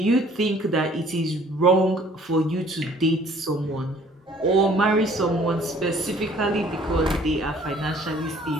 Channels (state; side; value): normal; both; correlation 0.56